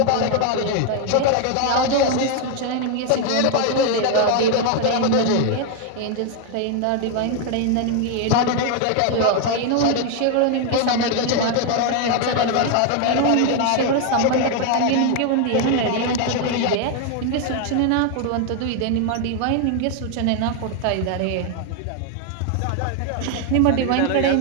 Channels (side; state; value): both; different; correlation 0.01